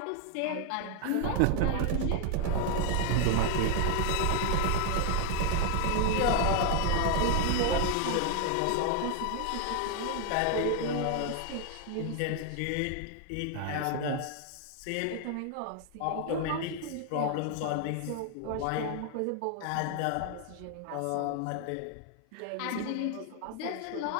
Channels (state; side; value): different; both; correlation 0.01